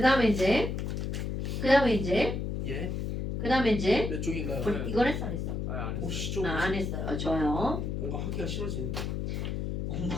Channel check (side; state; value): left; noise; hum, 2 dB below the sound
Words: 몇 쪽인가요? 이건 했어, 안 했어? 안 했어요. 혹시 좀 안 했어요. 좋아요. 뭔가 하기가 싫어지는데.